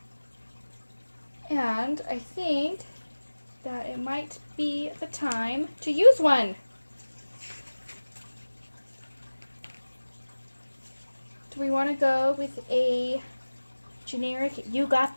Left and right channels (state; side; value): inverted; both; correlation -1.00